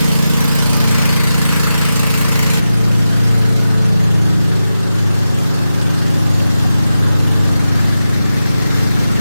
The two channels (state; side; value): inverted; both; correlation -0.92